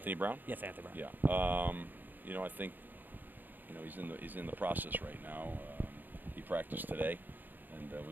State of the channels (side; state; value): left; late; 0.089 ms